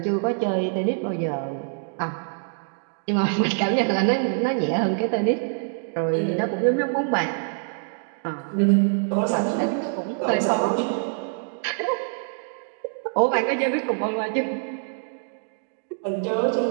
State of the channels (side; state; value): left; silent; 60 dB below the other